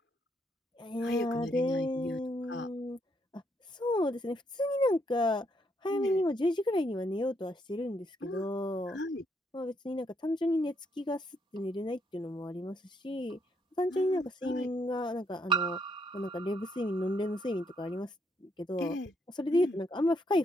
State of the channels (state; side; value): normal; both; correlation 0.74